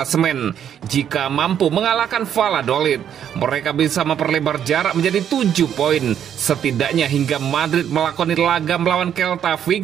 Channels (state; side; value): quieter; left; 9.3 dB